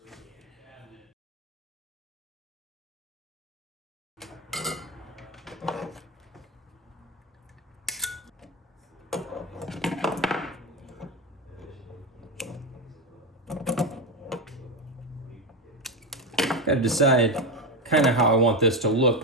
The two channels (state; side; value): normal; both; correlation 0.13